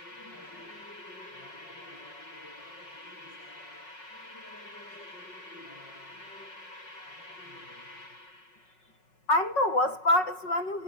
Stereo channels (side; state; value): right; late; 5.4 ms